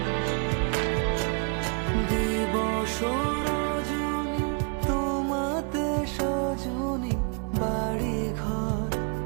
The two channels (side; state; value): left; quieter; 37.0 dB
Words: দিবস রজনী তোমাতে সজনী, বাড়ি ঘর